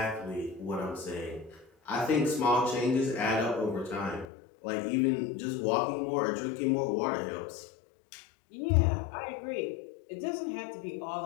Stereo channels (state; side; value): drops out; right; at 4.2 s